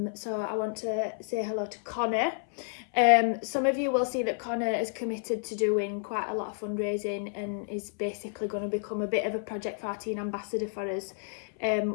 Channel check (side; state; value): right; silent; 58 dB below the other